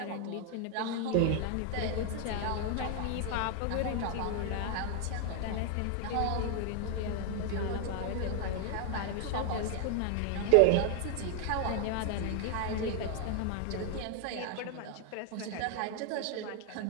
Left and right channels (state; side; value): different; both; correlation 0.00